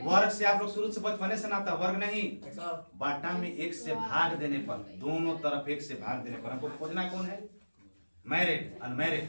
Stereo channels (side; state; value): both; inverted; correlation -1.00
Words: वर्ग से आप लोग शुरू से बचपने से नाता, वर्ग नहीं बाटा में एक से भाग देने पर, दोनों तरफ एक से भाग देने पर हमको खोजना कौन है? मैरिड अनमैरिड